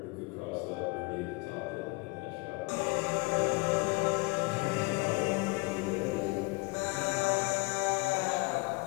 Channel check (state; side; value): quieter; right; 26.2 dB